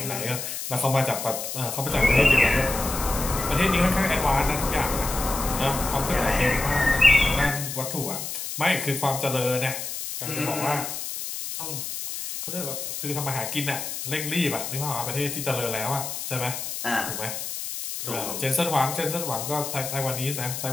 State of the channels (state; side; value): noise; left; hiss, 6 dB below the sound